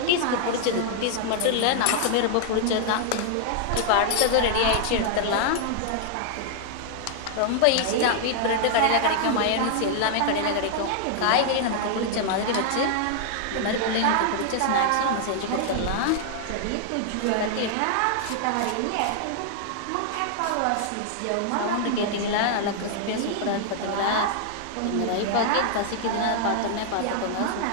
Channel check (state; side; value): different; both; correlation 0.00